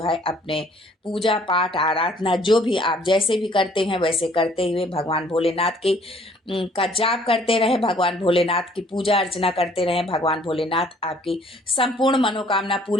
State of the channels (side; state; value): both; normal; correlation 0.59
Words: है अपने पूजा पाठ, आराधना, जो भी आप जैसे भी करते हैं वैसे करते हुए भगवान भोलेनाथ की का जाप करते रहे, भगवान भोलेनाथ की पूजा अर्चना करते रहे। भगवान भोलेनाथ आपकी संपूर्ण मनोकामना